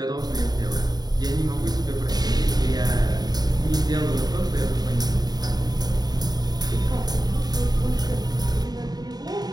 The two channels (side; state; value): left; late; 0.19 ms